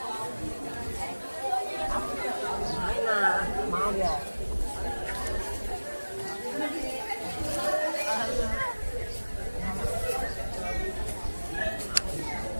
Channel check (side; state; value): both; inverted; correlation -1.00